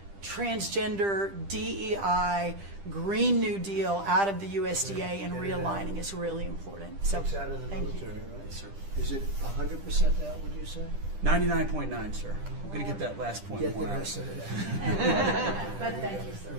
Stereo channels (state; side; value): late; left; 10 ms